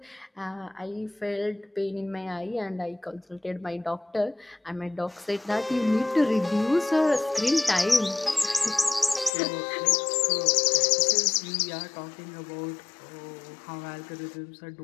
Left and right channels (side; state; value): right; drops out; at 9.3 s